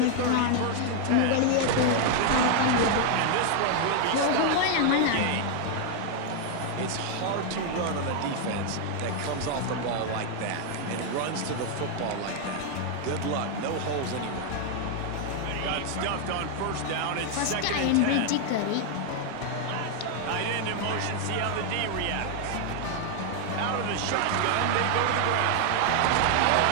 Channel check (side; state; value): both; different; correlation 0.00